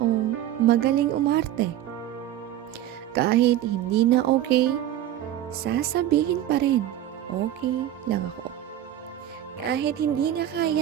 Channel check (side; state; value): left; quieter; 12.3 dB